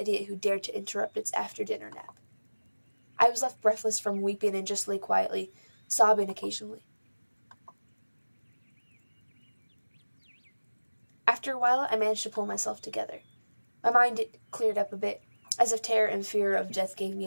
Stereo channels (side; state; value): both; inverted; correlation -1.00